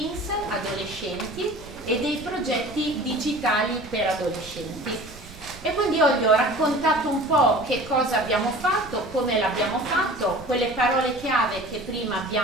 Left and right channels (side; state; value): right; noise; rumble, 19 dB below the sound